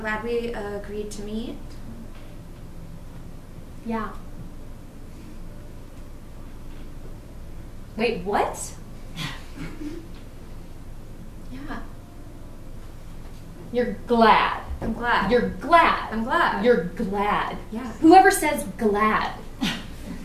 glad we agreed to meet. Yeah. Wait, what? Yeah, You're glad. I'm glad. You're glad. I'm glad. You're glad. Yeah. Whoever says glad.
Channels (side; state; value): both; identical; correlation 1.00